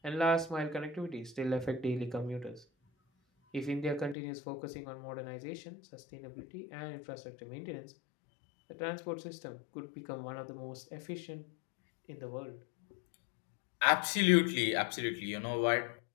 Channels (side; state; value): right; drops out; at 4.2 s